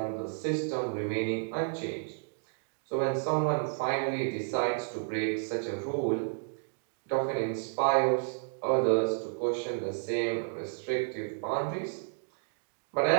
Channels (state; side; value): silent; left; digital silence